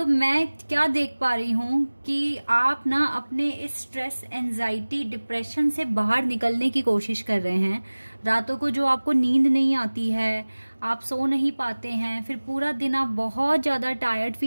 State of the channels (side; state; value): both; inverted; correlation -1.00